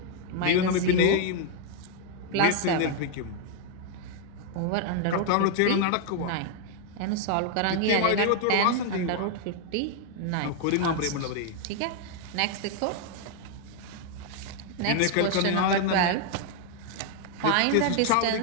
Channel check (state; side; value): different; both; correlation 0.00